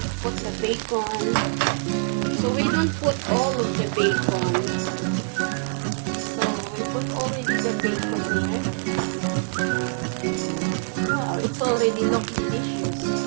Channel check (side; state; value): left; silent; 62 dB below the other